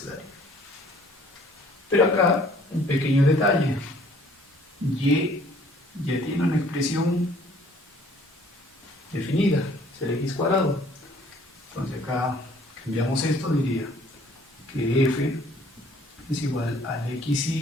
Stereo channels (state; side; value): normal; both; correlation 0.57